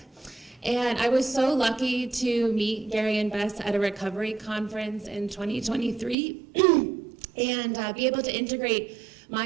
And I was so lucky to meet Gary and Bess at a recovery conference in 2023 and be able to integrate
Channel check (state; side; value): drops out; left; at 6.2 s